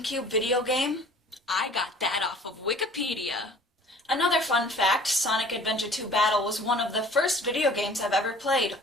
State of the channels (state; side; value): normal; both; correlation 0.49